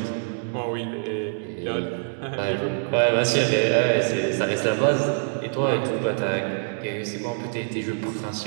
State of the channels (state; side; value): silent; left; digital silence